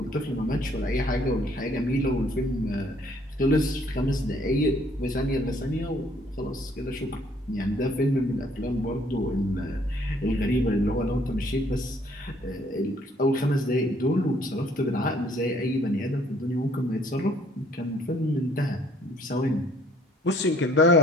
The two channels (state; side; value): normal; both; correlation 0.61